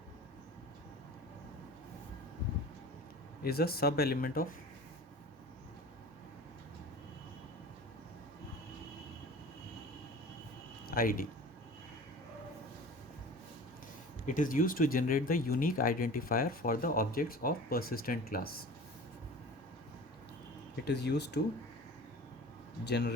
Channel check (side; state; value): both; normal; correlation 0.39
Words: is a sub element of id. It is used to generate the unique identifier for the objects of persistent class. It is used to